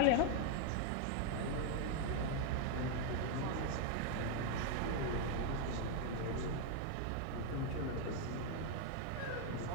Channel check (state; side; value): different; both; correlation 0.00